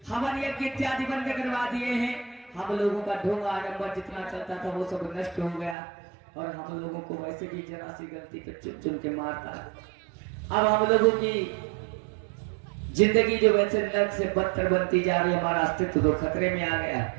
हवन यज्ञ इत्यादि बंद करवा दिए हैं। हम लोगों का ढोंग आडंबर जितना चलता था वो सब नष्ट हो गया और हम लोगों को वैसे भी जरा सी गलती पे चुन चुन के मारता है। अब हम लोगों की जिंदगी जो वैसे नर्क से बदतर बनती जा रही है, हमारा अस्तित्व तो खतरे में आ गया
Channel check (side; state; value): left; drops out; at 5.8 s